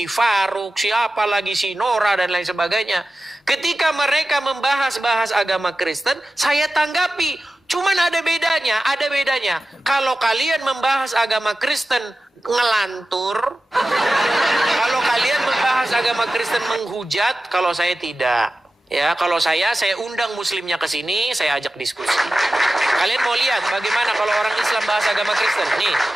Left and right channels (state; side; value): normal; both; correlation 0.94